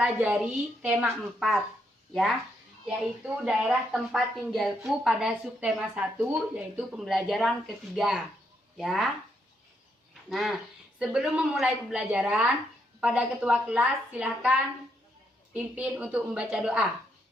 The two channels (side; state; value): both; normal; correlation 0.77